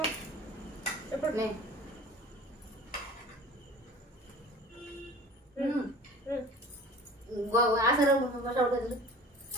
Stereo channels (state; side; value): normal; both; correlation 0.42